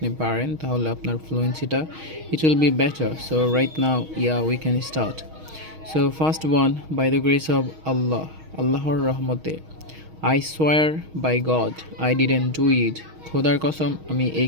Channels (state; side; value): late; left; 6.4 ms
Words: পারেন তাহলে আপনার ফ্লুয়েন্সিটা it will be better. So right now we can start. So first one, by the grace of Allah, আল্লাহর রহমতে. I swear by God I didn't do it. খোদার কসম আমি এই